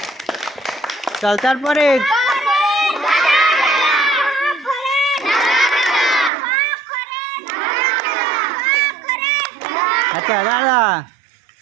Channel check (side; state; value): left; drops out; at 6.3 s